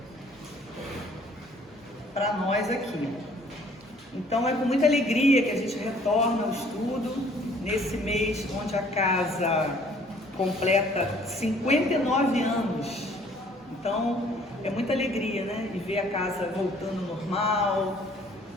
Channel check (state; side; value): normal; both; correlation 0.57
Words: para nós aqui. Então é com muita alegria que a gente retorna ao estudo nesse mês onde a casa completa 59 anos. Então é muita alegria, né, e ver a casa voltando ao normal,